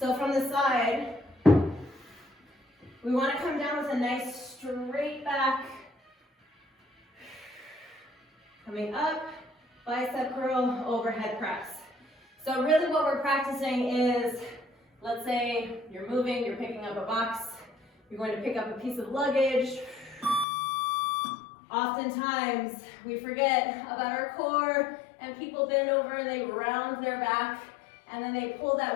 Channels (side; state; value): right; drops out; at 20.5 s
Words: from the side, we want to come down with a nice straight back. Coming up, bicep curl, overhead press. So really what we're practicing is, let's say you're moving, you're picking up a box, you're going to pick up a piece of luggage. Oftentimes, we forget about our core, and people bend over and they round their back, and then they pull